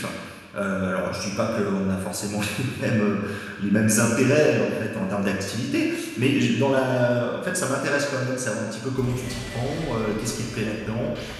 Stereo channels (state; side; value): identical; both; correlation 1.00